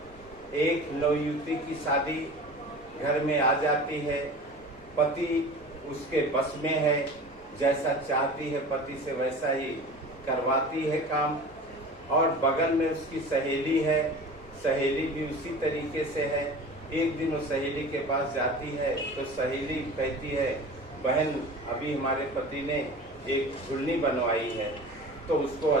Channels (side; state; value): both; normal; correlation 0.37